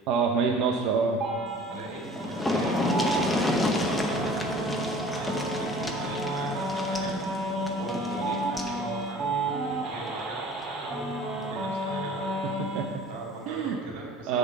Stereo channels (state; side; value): normal; both; correlation 0.47